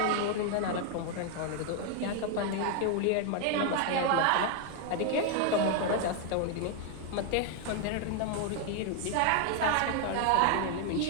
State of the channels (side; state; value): both; different; correlation 0.00